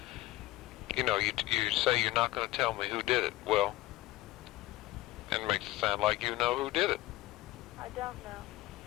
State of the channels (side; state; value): right; quieter; 17.4 dB